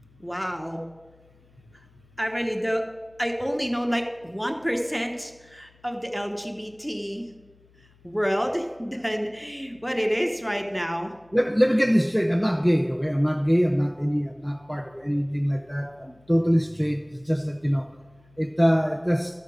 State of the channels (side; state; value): left; noise; hum, 30 dB below the sound